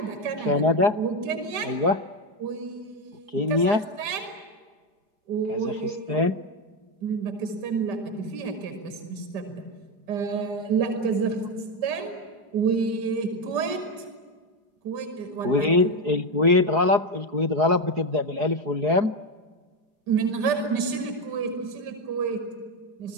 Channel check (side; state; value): left; late; 5.1 ms